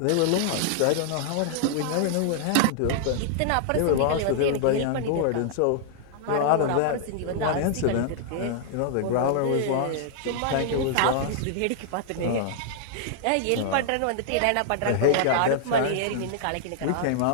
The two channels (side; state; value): both; different; correlation -0.01